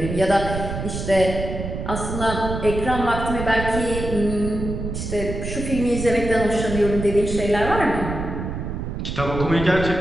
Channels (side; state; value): right; noise; rumble, 5 dB below the sound